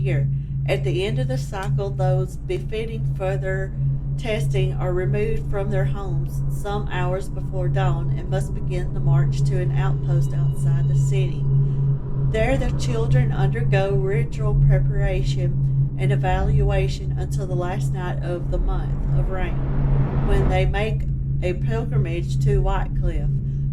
At the end of the cycle, those befitting further testing are removed from their homes some hours before dawn and must begin the march to an outpost outside the city. There the children undergo ritual preparation and evaluation until the last night of the month of rain, when they make a pilgrimage to Whitecliff.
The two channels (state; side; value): identical; both; correlation 1.00